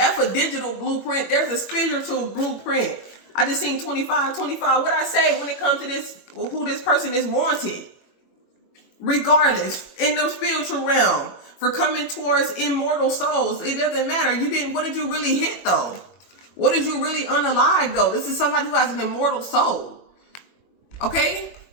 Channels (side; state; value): right; late; 21 ms